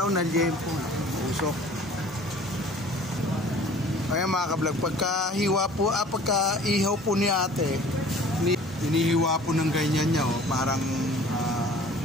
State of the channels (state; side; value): normal; both; correlation 0.49